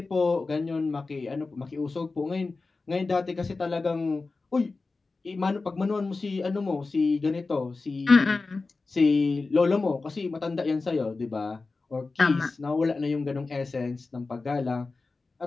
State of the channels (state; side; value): quieter; right; 3.8 dB